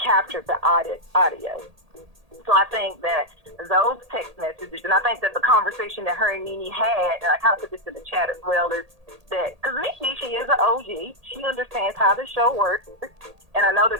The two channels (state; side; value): late; left; 1.8 ms